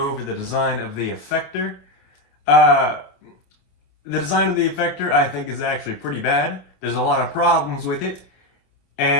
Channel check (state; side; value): late; right; 27 ms